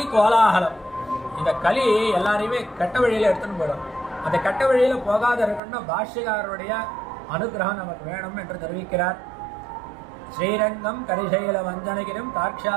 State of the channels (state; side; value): drops out; left; at 5.6 s